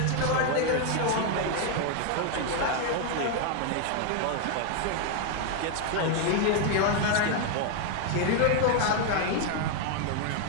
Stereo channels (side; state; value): both; different; correlation 0.00